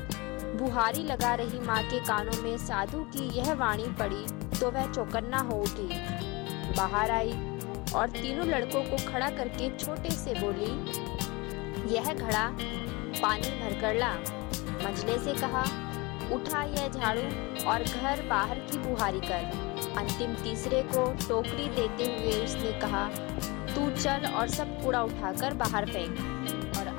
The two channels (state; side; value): quieter; right; 25.3 dB